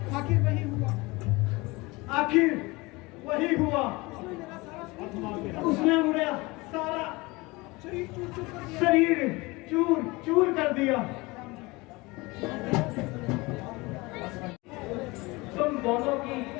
आखिर वही हुआ। आखिर वही हुआ। उसने मेरा सारा शरीर चूर चूर कर दिया। तुम दोनों की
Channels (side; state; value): right; quieter; 23.5 dB